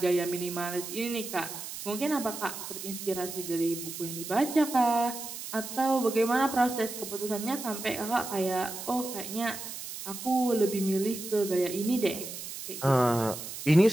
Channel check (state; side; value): noise; right; hiss, 9 dB below the sound